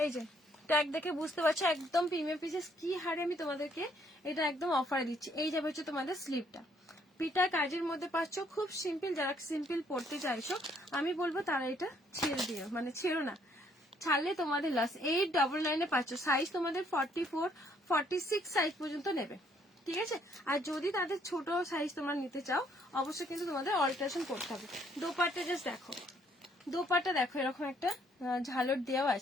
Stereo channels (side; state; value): both; normal; correlation 0.67